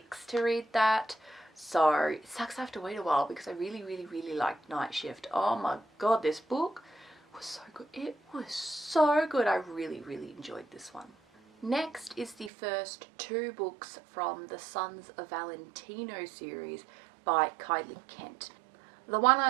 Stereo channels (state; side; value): drops out; left; at 12.5 s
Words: to read that. So it sucks I have to wait a while because I really, really, really liked Night Shift. Oh my god, this book was so good. It was so good. I really, really enjoyed this one. Next is the first 2 books from the Sons of Valentino series by Kylie Kent. The one